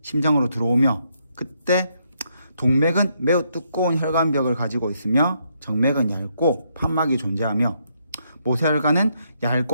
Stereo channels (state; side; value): inverted; both; correlation -0.75